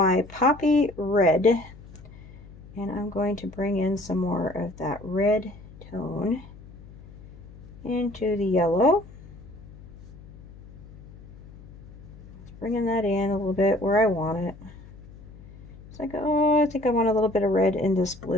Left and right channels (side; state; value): left; noise; hum, 19 dB below the sound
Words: poppy red, and I'm going to bring in some more of that red tone into the yellow. Bringing that in a little bit where I want it. It's like, oh, I think I want a little bit of red in this